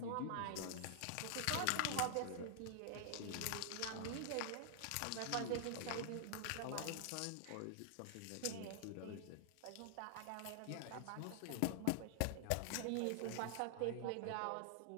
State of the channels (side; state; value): both; different; correlation 0.00